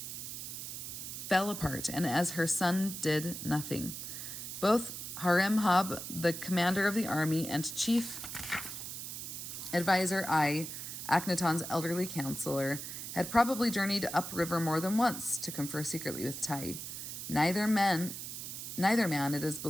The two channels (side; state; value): right; noise; hiss, 7 dB below the sound